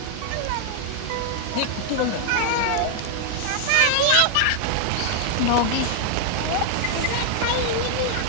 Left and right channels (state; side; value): different; both; correlation 0.00